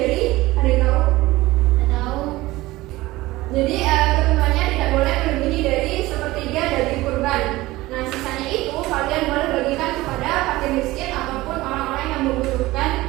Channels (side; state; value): left; quieter; 18.7 dB